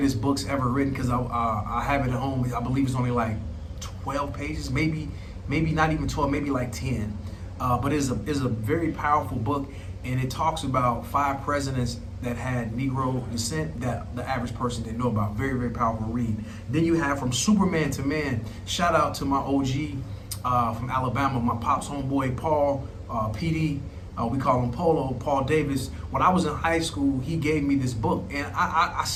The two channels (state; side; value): identical; both; correlation 1.00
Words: books ever written, because I have it at home. I believe it's only like 12 pages, maybe not even 12, maybe like 10. But it's a very powerful book, and it talks about 5 presidents that had Negro descent that the average person didn't know about. Very, very powerful read. Then you have From Superman to Man. Shout out to my OG from Alabama, my pops homeboy, Paul, PD. We call him Polo, Paul Davis. When I was in high school, he gave me this book, and I